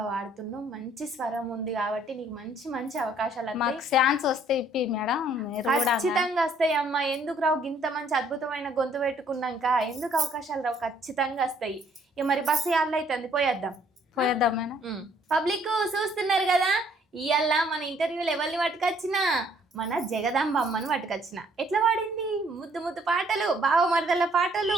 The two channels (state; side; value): normal; both; correlation 0.63